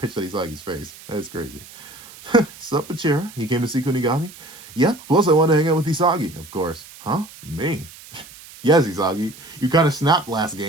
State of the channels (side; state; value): right; noise; hiss, 19 dB below the sound